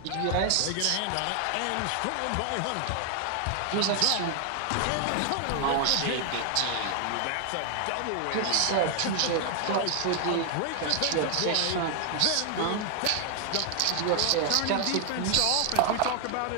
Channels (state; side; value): different; both; correlation 0.00